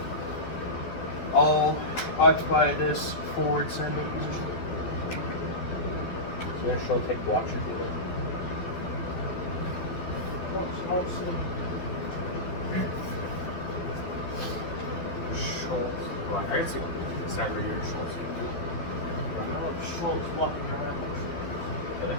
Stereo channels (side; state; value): right; late; 12 ms